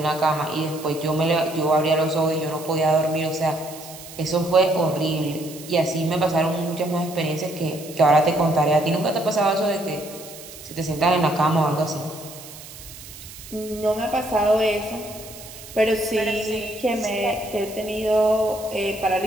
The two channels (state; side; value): noise; right; hiss, 16 dB below the sound